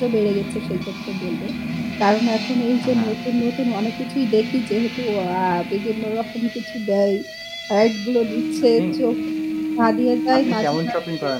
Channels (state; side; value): identical; both; correlation 1.00